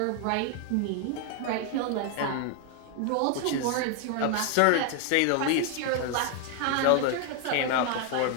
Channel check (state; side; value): different; both; correlation 0.00